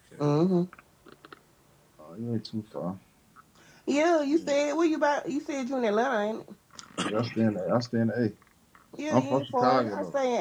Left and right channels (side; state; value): both; identical; correlation 1.00